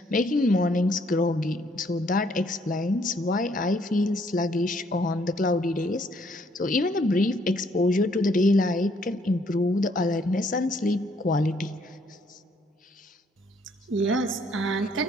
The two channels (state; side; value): normal; both; correlation 0.67